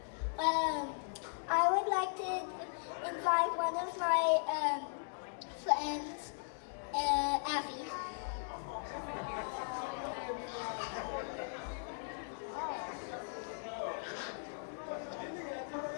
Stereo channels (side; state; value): right; silent; digital silence